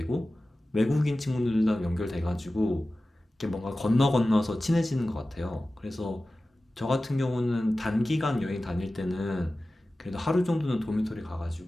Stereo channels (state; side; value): normal; both; correlation 0.96